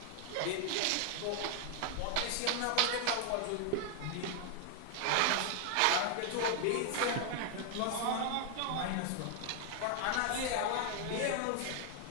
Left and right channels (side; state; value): both; different; correlation 0.00